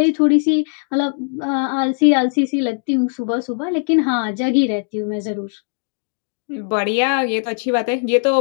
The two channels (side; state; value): right; silent; 59 dB below the other